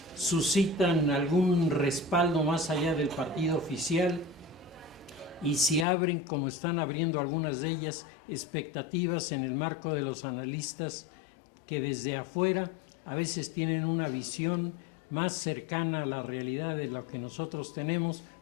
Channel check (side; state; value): right; drops out; at 5.9 s